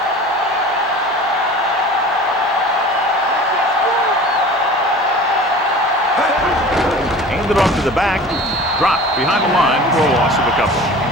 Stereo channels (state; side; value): normal; both; correlation 0.40